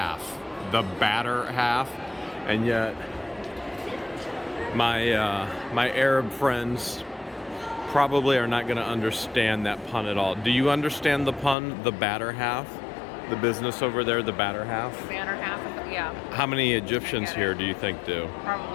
the batter half, and yet my Arab friends probably are not going to understand that pun at all. Do you understand the pun, the batter half? The business over there, the batter half? The batter half, yeah. How many Egyptians here do you think do?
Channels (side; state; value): right; drops out; at 11.6 s